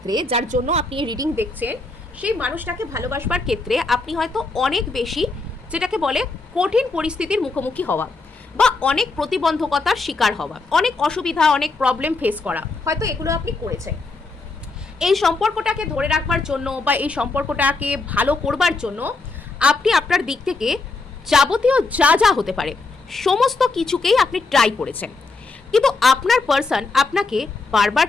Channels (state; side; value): quieter; right; 3.6 dB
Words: যার জন্য আপনি এই রিডিং দেখছেন, সেই মানুষটাকে ভালোবাসবার ক্ষেত্রে আপনি হয়তো অনেক বেশি, যেটাকে বলে কঠিন পরিস্থিতির মুখোমুখি হওয়া, বা অনেক প্রতিবন্ধকতার শিকার হওয়া, অনেক অসুবিধা, অনেক প্রবলেম ফেস করা, হয়তো এগুলো আপনি করেছেন। এই সম্পর্কটাকে ধরে রাখবার জন্য বা এই সম্পর্কটাকে ভালো করবার জন্য আপনি আপনার দিক থেকে যাবতীয় যা যা হতে পারে সমস্ত কিছুকেই আপনি ট্রাই করেছেন, কিন্তু আপনার পার্সন আপনাকে বারবার